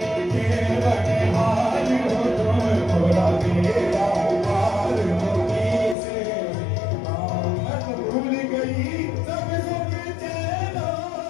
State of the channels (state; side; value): drops out; right; at 6.0 s